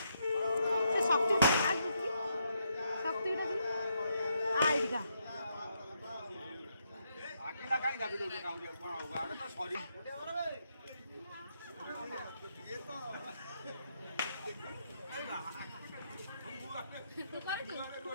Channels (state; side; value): inverted; both; correlation -0.78